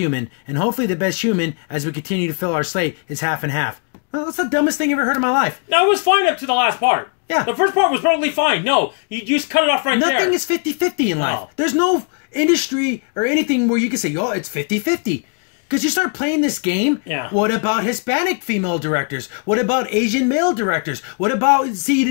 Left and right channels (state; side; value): quieter; right; 38.3 dB